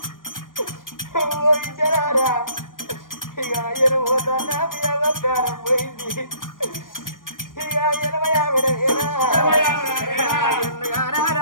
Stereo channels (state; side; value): late; right; 0.90 ms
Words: ఇద్దరారా ఇక ఆయన పోతానా మీ అవకారం పోయింది ఇక 80 ఆవిడ